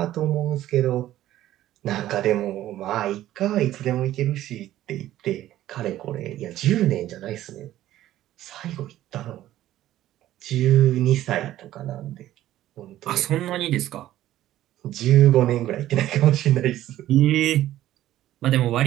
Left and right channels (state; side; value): quieter; left; 13.7 dB